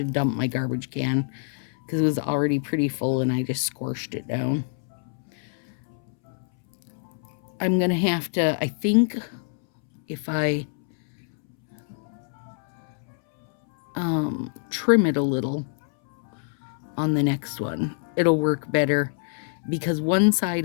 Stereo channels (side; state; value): right; silent; 61 dB below the other